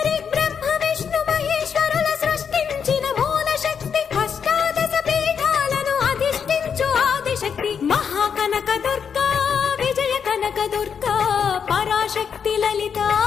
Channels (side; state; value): right; quieter; 7.0 dB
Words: బ్రహ్మ విష్ణు మహేశ్వరుల సృష్టించిన మూల శక్తి అష్టాదశ పీఠాలను అధిష్ఠించు ఆదిశక్తి మహాకనకదుర్గా విజయ కనకదుర్గా పరాశక్తి లలితా